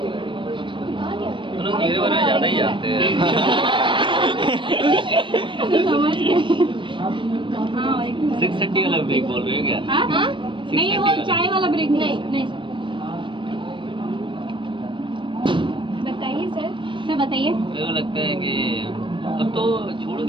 तुम लोग मेरे बारे में ज़्यादा ही जानते हैं। हाँ 6:30 वाला ब्रेक बोल रहे हो क्या? हाँ? नहीं वो चाय वाला ब्रेक नहीं नहीं बताइए सर। सर बताइए। मेरे को लगता है कि अब तो छोड़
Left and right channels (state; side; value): late; left; 0.24 ms